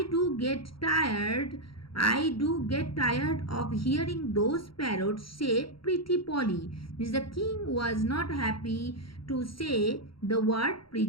do get tired of hearing those parrots say pretty Polly. Means the king was not happy to say the word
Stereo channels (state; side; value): late; right; 0.74 ms